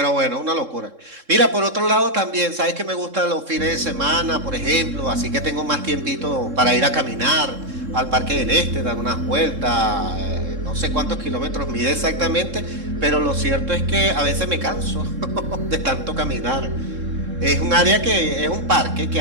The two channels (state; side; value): late; left; 3.7 ms